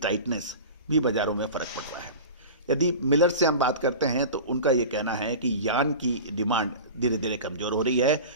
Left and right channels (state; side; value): inverted; both; correlation -0.33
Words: भी बाज़ारों में फ़र्क पड़ रहा है। यदि मिलर से हम बात करते हैं तो उनका ये कहना है कि यार्न की डिमांड धीरे धीरे कमज़ोर हो रही है,